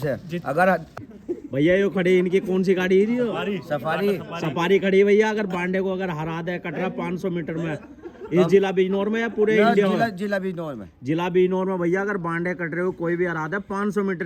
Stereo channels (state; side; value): identical; both; correlation 1.00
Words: अगर भैया ये खड़ी इनकी कौन सी गाड़ी है जी? सफारी सफारी खड़ी है भैया। अगर बांडे को अगर हरा दे कटरा 500 मीटर में इस जिला बिजनौर में या पूरे इंडिया में? जिला बिजनौर में। जिला बिजनौर में भैया अगर बांडे कट रहे हो कोई भी हरा दे 500